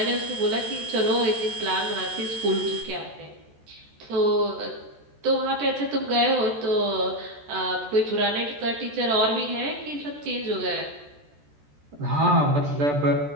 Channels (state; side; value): late; left; 14 ms